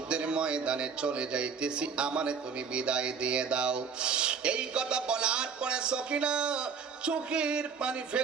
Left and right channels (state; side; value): quieter; left; 6.0 dB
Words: ময়দানে চলে যাইতেছি, আমারে তুমি বিদায় দিয়ে দাও। এই কথা বলার পরে সখিনা চোখের পানি